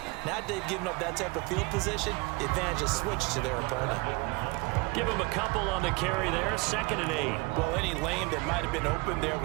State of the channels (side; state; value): left; quieter; 26.5 dB